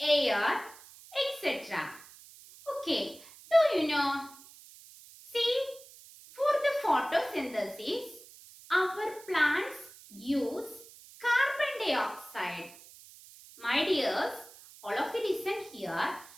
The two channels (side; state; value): right; noise; hiss, 20 dB below the sound